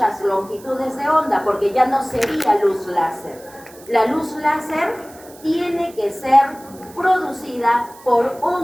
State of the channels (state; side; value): noise; right; hiss, 22 dB below the sound